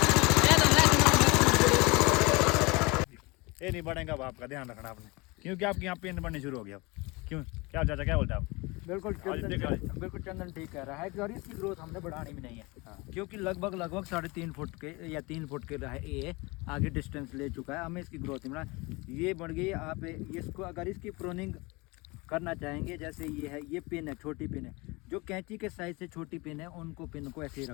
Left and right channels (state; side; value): quieter; right; 25.1 dB